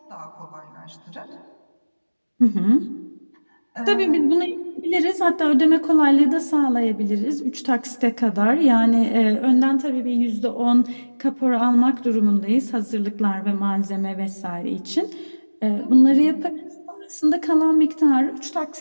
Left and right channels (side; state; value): both; inverted; correlation -1.00